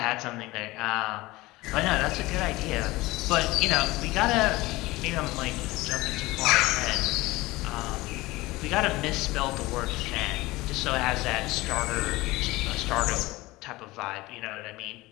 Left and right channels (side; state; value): right; quieter; 20.1 dB